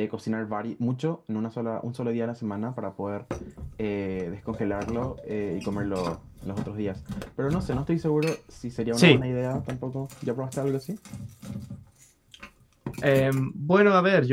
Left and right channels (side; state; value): both; identical; correlation 1.00